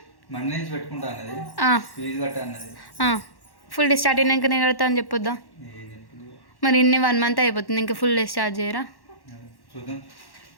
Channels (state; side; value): late; right; 1.1 ms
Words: ఫుల్ డే స్టార్ట్ అయినాక నేను కడతా అని చెప్పొద్దా మరి ఇన్ని 1 month అయిపోతుంది ఇంకా ఫుల్ డే స్టార్ట్ చేయరా